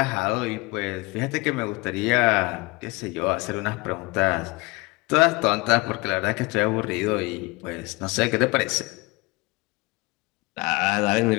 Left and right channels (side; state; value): right; quieter; 24.8 dB